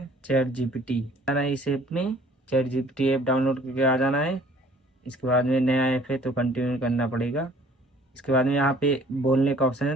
चैट जीपीटी, आना है इस ऐप में। चैट जीपीटी ऐप डाउनलोड करके आ जाना है। इसके बाद में नया ऐप है तो कंटिन्यू करना पड़ेगा। इसके बाद में यहाँ पे बोलने का ऑप्शन है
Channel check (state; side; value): normal; both; correlation 0.54